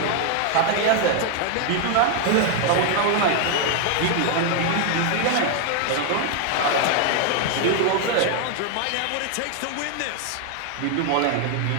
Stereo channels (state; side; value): different; both; correlation 0.00